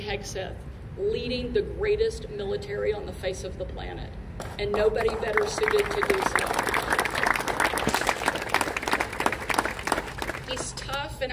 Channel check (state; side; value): identical; both; correlation 1.00